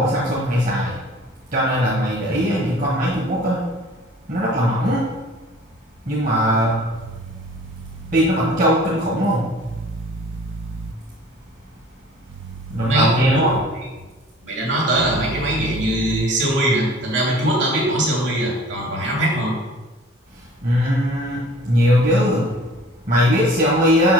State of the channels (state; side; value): normal; both; correlation 0.48